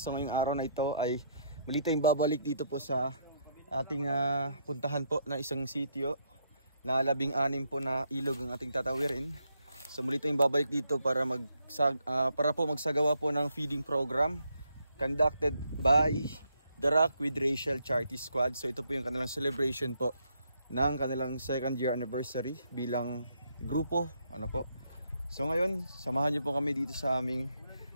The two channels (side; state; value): both; inverted; correlation -0.74